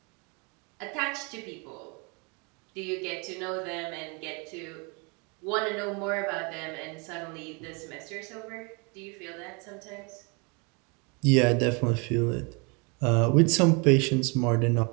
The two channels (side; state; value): left; quieter; 32.3 dB